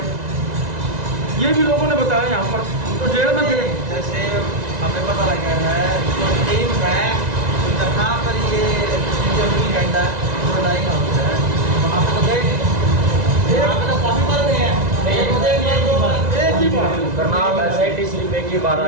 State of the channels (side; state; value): left; late; 1.9 ms